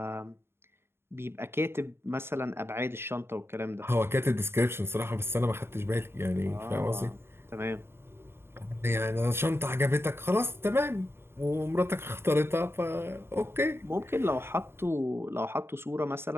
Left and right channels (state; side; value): late; left; 0.11 ms